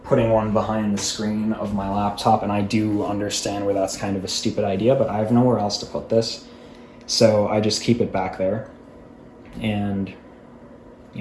putting one behind the screen of my laptop, and I do understand where that's kind of a stupid idea, but I have nowhere else to put this, so I just keep it back there. And,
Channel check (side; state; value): both; identical; correlation 1.00